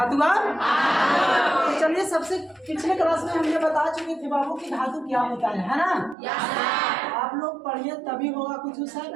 का तो चलिए, सबसे पिछले क्लास में हमने बता चुके थे बाबू कि धातु क्या होता है ना? आप लोग पढ़िए तभी होगा कुछ सर,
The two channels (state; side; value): drops out; left; at 6.2 s